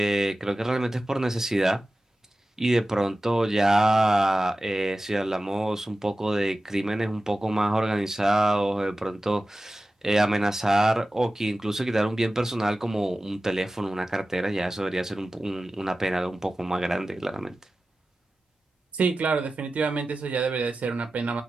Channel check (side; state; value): both; normal; correlation 0.95